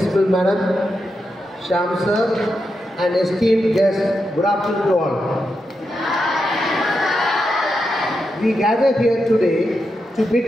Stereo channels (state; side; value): normal; both; correlation 0.86